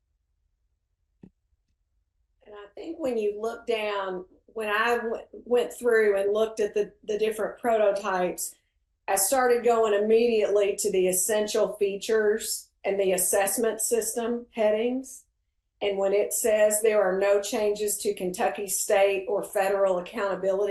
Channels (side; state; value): both; identical; correlation 1.00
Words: And I think when you look down, when I went through and looked at the different prototypes, I started going immediately to the essential features and the assessment system headings. And when it says there are no changes to Kentucky state or federal